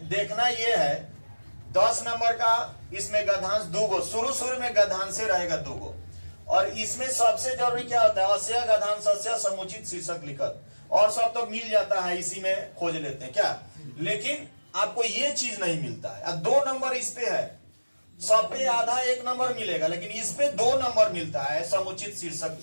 देखना ये है 10 नंबर का, इसमें गद्यांश 2 गो, शुरू में गद्यांश से रहेगा 2 गो। और इसमें सबसे जरूरी क्या होता है, अस्य गद्यांशस्य समुचित शीर्षक लिखत, और सब तो मिल जाता है, इसी में खोज लेते हैं क्या। लेकिन आपको ये चीज नहीं मिलता है। अब 2 नंबर इस पे है, सब पे आधा 1 नंबर मिलेगा, लेकिन इस पे 2 नंबर मिलता है समुचित शीर्षक।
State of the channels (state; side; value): inverted; both; correlation -1.00